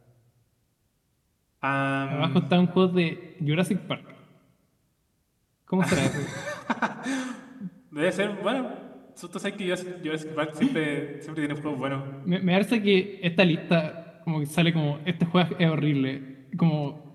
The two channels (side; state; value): both; identical; correlation 1.00